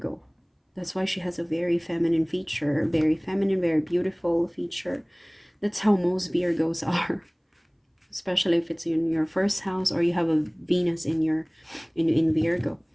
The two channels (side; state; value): both; identical; correlation 1.00